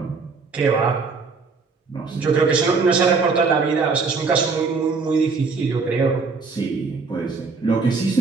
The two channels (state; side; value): quieter; left; 4.6 dB